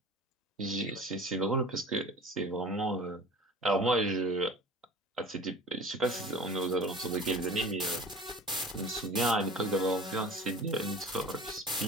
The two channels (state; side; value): normal; both; correlation 0.41